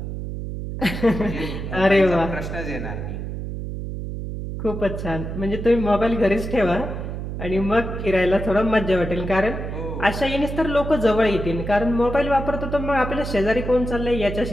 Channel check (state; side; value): noise; right; hum, 6 dB below the sound